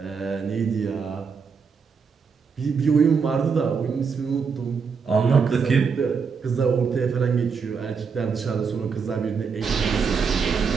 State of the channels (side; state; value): left; quieter; 5.7 dB